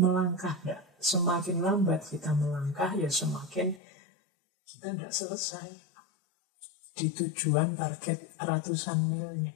enggak? Semakin lambat kita melangkah, ya semakin kita enggak selesai di tujuan target ratusan milnya.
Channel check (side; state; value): right; drops out; at 3.8 s